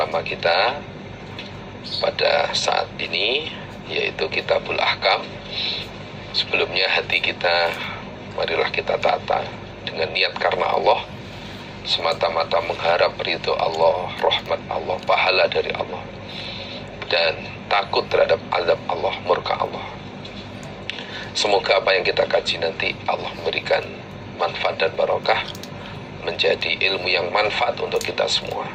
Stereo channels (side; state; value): both; identical; correlation 1.00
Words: kita pada saat ini, yaitu Kitabul Ahkam. Sebelumnya hati kita, marilah kita tata dengan niat karena Allah, semata-mata mengharap ridho Allah, rahmat Allah, pahala dari Allah, dan takut terhadap azab Allah, murka Allah. Semoga apa yang kita kaji nanti Allah memberikan manfaat dan barokah, menjadi ilmu yang manfaat untuk kita semua.